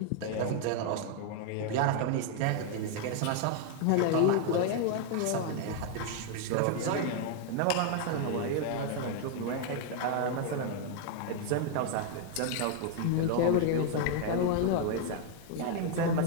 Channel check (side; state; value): both; different; correlation 0.00